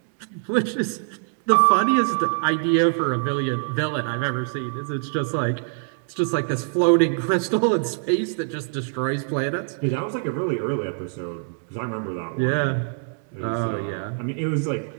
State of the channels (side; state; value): left; silent; digital silence